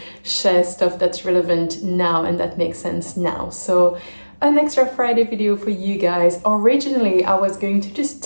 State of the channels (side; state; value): both; inverted; correlation -1.00